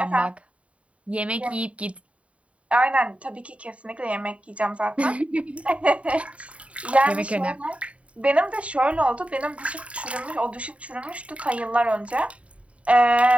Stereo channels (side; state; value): left; late; 0.064 ms